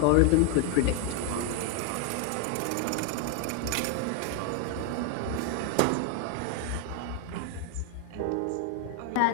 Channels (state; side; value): different; both; correlation 0.00